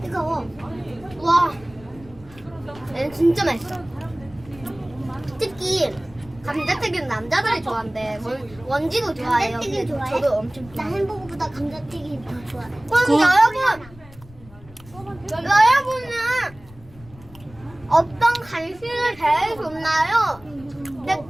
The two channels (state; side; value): noise; left; rumble, 22 dB below the sound